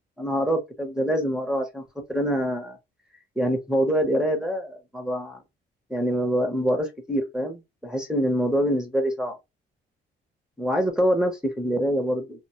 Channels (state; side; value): normal; both; correlation 0.72